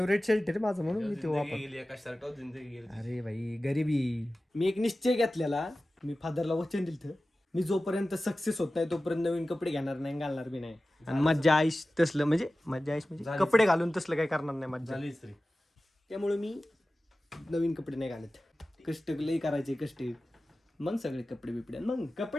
शर्ट आहे माझं, म्हणून मी तो वापर. एका शर्टावर जिंदगी गेली. अरे भाई गरिबी. मी एक निश्चय घेतलेला, मी फादरला वचन दिलं, मी जोपर्यंत सक्सेस होत नाही तोपर्यंत नवीन कपडे घेणार नाही, घालणार बी नाही. आणि मज्जा आईश तसलं, म्हणजे मज्जा आईश म्हणजे कपडे घालून तसलं काही करणार नाही मज्जा. त्यामुळे मी नवीन कपडे नाही घालत. कष्ट लई करायचे, कष्ट मग सगळे कपडे बिपडे, मग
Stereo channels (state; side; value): normal; both; correlation 0.95